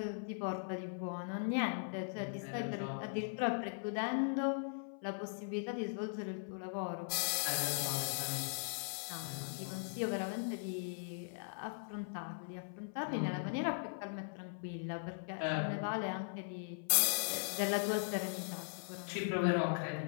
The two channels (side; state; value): right; silent; 51 dB below the other